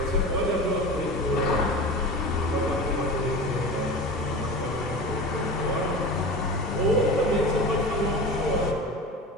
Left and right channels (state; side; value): normal; both; correlation 0.31